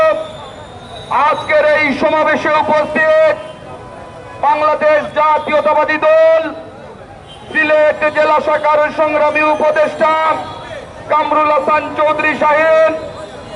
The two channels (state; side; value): identical; both; correlation 1.00